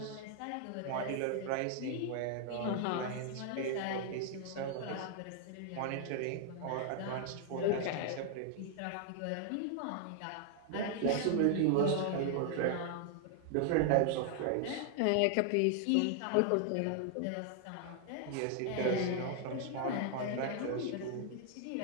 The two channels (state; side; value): different; both; correlation 0.00